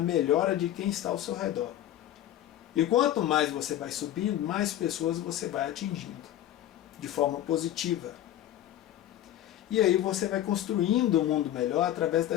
de quem está ao seu redor. E quanto mais você vai subindo, mais pessoas você vai atingindo, de forma positiva. E aí você vai construindo um mundo melhor através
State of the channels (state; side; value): quieter; right; 12.4 dB